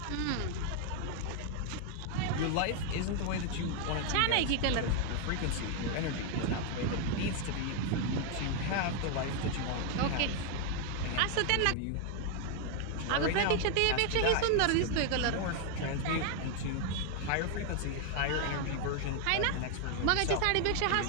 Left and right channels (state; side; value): different; both; correlation 0.01